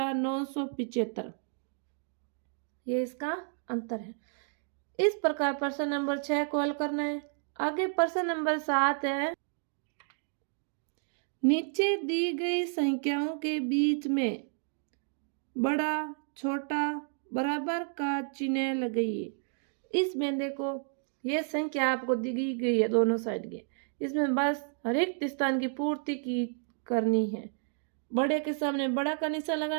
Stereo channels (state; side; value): silent; left; 57 dB below the other